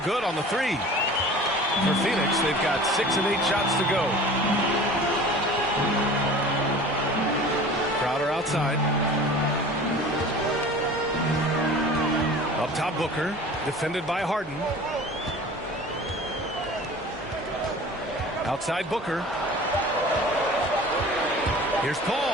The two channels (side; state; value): both; normal; correlation 0.42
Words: good on the 3. For Phoenix, they've got 6 of 8 shots to go. Crowder outside. Up top, Booker, defended by Harden. Outside Booker. Here's